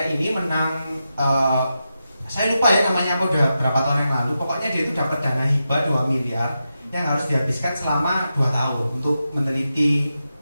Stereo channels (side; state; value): both; inverted; correlation -0.89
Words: ini menang, saya lupa ya namanya apa, udah berapa tahun yang lalu. Pokoknya dia itu dapat dana hibah 2 miliar yang harus dihabiskan selama 2 tahun untuk meneliti.